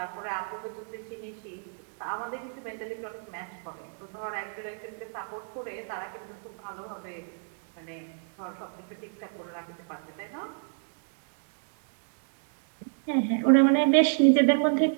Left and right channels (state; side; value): silent; left; digital silence